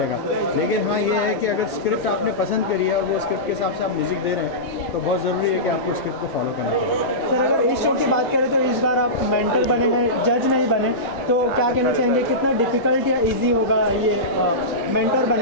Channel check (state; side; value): normal; both; correlation -0.17